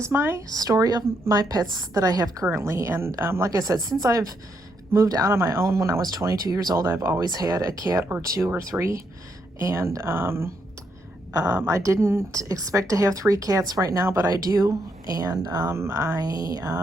my story of my pets that I have currently, and like I said, since I've moved out on my own when I was 22 years old, I've always had a cat or two or three, and I didn't expect to have 3 cats right now, but I do, and I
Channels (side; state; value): both; normal; correlation 0.78